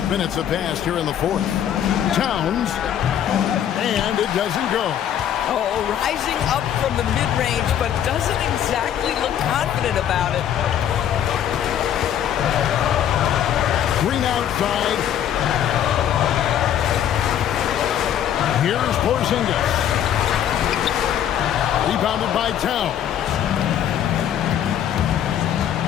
minutes have passed here in the fourth. Towns. And it doesn't go. Oh, rising up from the mid-range, but doesn't exactly look confident about it. Green outside. Here's Porzingis. Rebounded by Towns.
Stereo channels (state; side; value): quieter; right; 10.1 dB